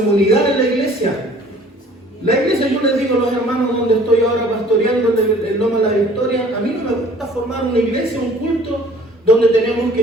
en la iglesia. La iglesia, yo les digo a los hermanos donde estoy ahora pastoreando en Loma de la Victoria, a mí no me gusta formar una iglesia, un culto, donde tenemos que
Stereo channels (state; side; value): normal; both; correlation 0.52